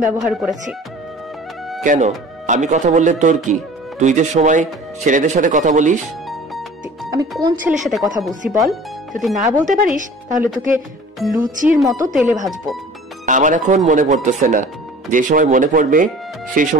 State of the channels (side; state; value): both; normal; correlation 0.45